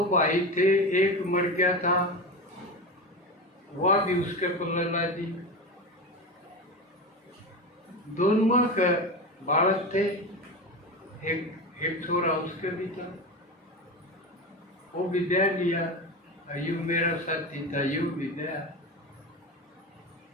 भाई थे, एक मर गया था, वह भी उसके पल्ले ला दी। दोनों के बालक थे, एक छोरा उसके भी था, वो भी दे लिया। यू मेरा साथी था, यू भी दया,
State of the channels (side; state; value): both; normal; correlation 0.23